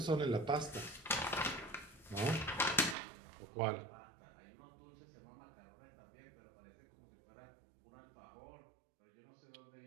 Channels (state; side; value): drops out; left; at 3.0 s